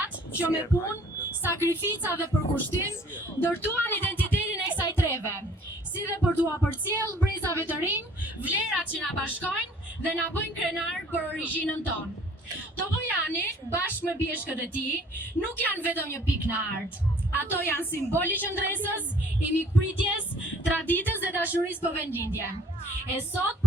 që me punë, sakrifica dhe përkushtim ndërtuan identitetin e kësaj treve, si dhe për t'u përcjellë brezave të rinj vlerat që na bashkojnë dhe na bëjnë krenar për origjinën tonë. Topojani, bashkë me pjeshkët e tij, nuk janë vetëm një pikë në art. Ato janë simboli qëndresës, i mikpritjes, traditës dhe dashurisë për vendlindje. E sot,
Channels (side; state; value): both; normal; correlation 0.55